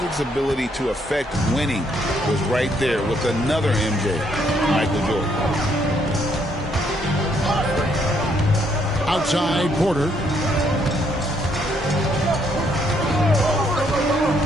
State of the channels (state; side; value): normal; both; correlation 0.71